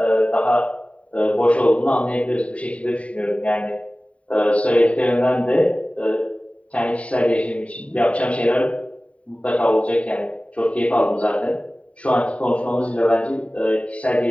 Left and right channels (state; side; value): late; right; 0.065 ms